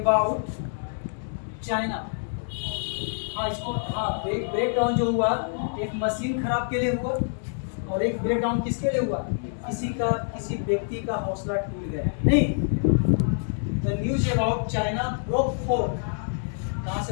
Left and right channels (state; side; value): silent; right; digital silence